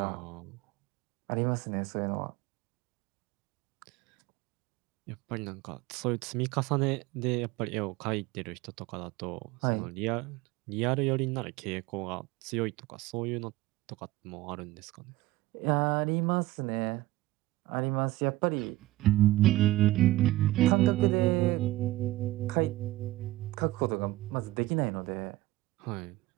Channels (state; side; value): quieter; left; 17.4 dB